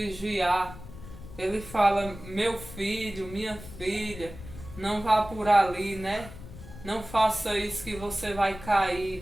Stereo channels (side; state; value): left; noise; rumble, 14 dB below the sound